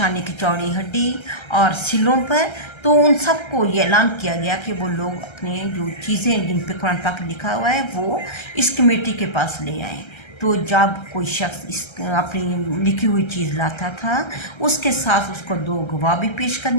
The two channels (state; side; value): late; right; 1.3 ms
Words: کی چوڑی ہڈی اور سلوں پر، تو ان سب کو یہ اعلان کیا گیا کہ وہ لوگ اپنے جو چیزیں جن پہ قرآن پاک لکھا ہوا ہے وہ اس کمیٹی کے پاس لے آئیں۔ تو جب کوئی شخص اپنی لکھی ہوئی چیز لاتا تھا اس کے ساتھ اس کو 2 گواہ بھی پیش